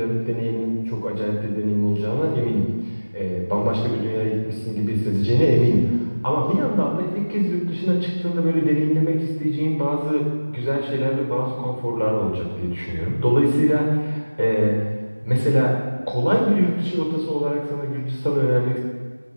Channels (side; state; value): both; inverted; correlation -1.00